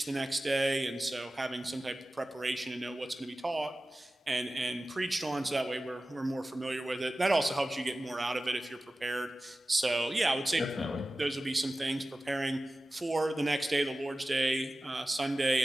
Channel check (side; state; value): both; normal; correlation 0.96